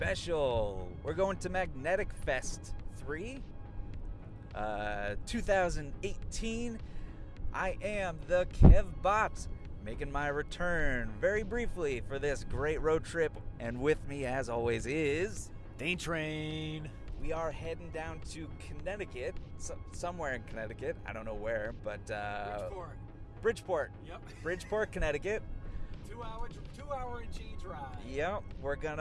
We're going to Magnetic Fest 3, 2018. I am the Kev Bot, making my return very briefly for this great road trip, and with me as always is Dane Train. We are heading down to Connecticut, somewhere in Connecticut. I don't know where, but Bridgeport. Yep. Bridgeport, Connecticut. 2 hour and change ride. Yep. We're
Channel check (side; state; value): both; identical; correlation 1.00